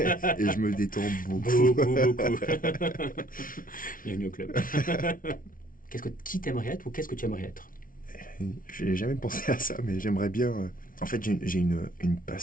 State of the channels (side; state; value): right; late; 0.40 ms